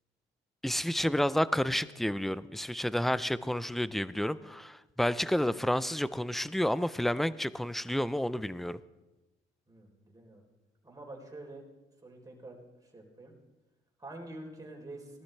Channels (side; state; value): both; normal; correlation 0.97